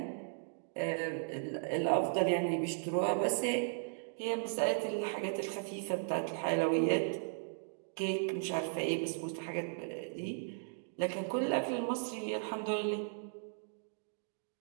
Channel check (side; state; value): left; silent; digital silence